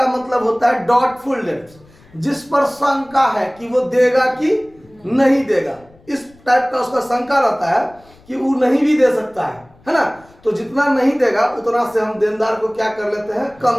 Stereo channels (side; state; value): left; noise; rumble, 28 dB below the sound